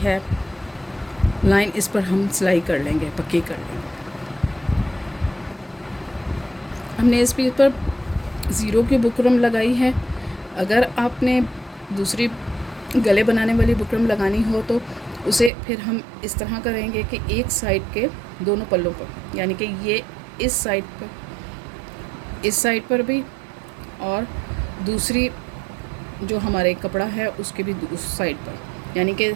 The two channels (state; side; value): drops out; left; at 15.5 s